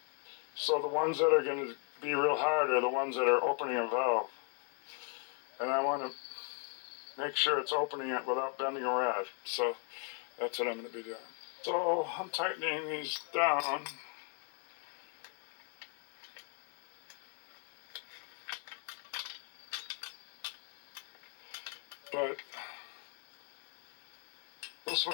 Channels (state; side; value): quieter; right; 37.6 dB